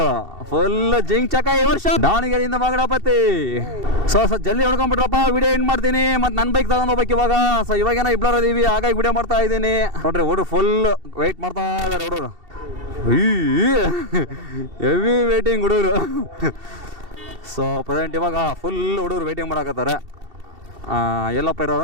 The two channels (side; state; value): left; late; 2.7 ms